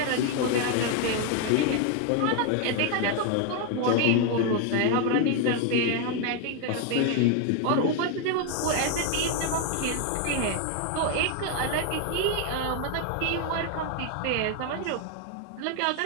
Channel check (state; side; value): different; both; correlation 0.01